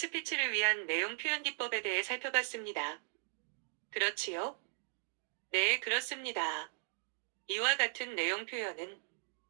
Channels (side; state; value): left; silent; digital silence